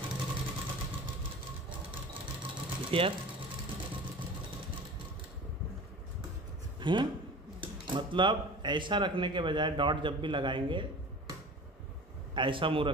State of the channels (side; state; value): both; normal; correlation 0.38